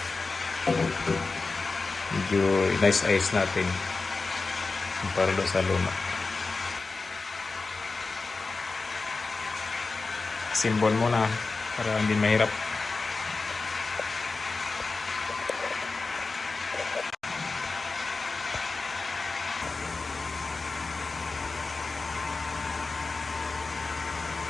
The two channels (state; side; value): quieter; right; 3.9 dB